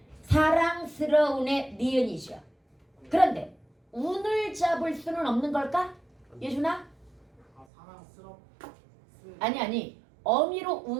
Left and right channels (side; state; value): left; drops out; at 7.7 s